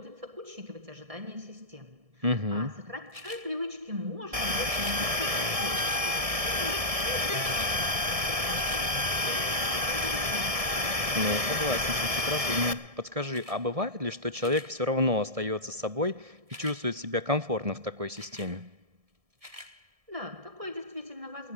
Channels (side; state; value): left; late; 1.7 ms